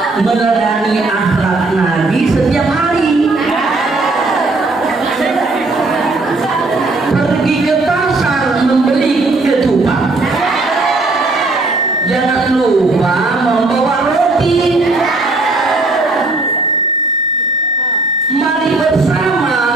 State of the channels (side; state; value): left; quieter; 3.2 dB